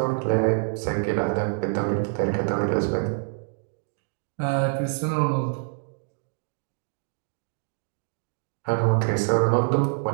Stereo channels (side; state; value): left; silent; digital silence